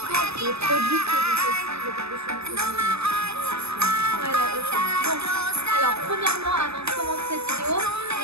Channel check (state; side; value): late; left; 0.79 ms